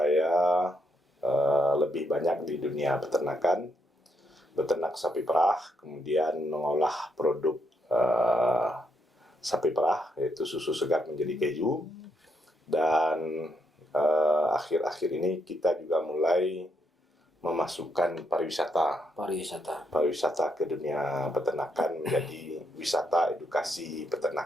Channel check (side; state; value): both; normal; correlation 0.77